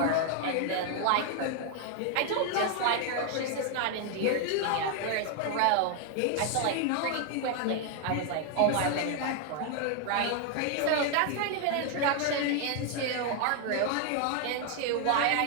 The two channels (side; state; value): both; different; correlation 0.01